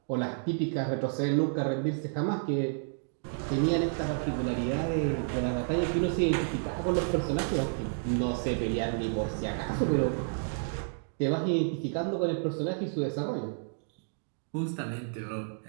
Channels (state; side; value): silent; left; digital silence